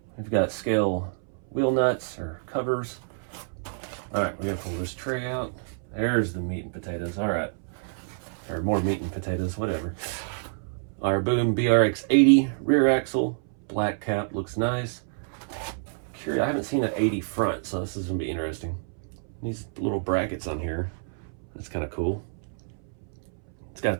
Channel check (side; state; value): left; silent; 60 dB below the other